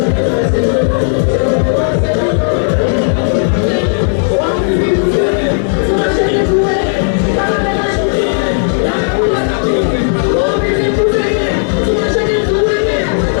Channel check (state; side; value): silent; right; 65 dB below the other